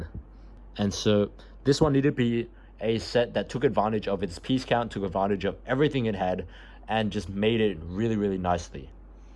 And so, this one needed to be a set that took advantage of its piece count, took advantage of everything it had, and just made it really, really nicely.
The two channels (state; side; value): identical; both; correlation 1.00